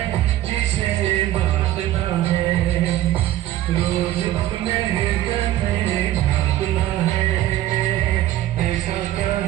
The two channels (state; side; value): quieter; left; 13.9 dB